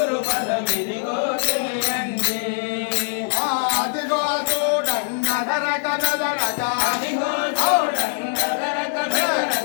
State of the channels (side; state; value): right; silent; 64 dB below the other